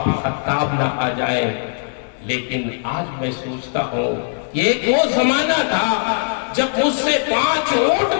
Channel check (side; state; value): right; silent; 65 dB below the other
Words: خطاب نہ آ جائے. لیکن آج میں سوچتا ہوں یہ ایک وہ زمانہ تھا جب مجھ سے 5 اونٹ